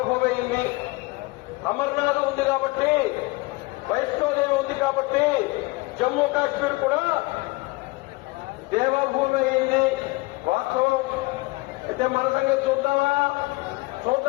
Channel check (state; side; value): quieter; right; 23.7 dB